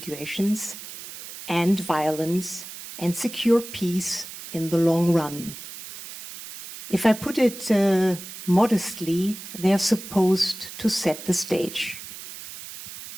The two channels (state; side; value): noise; right; hiss, 13 dB below the sound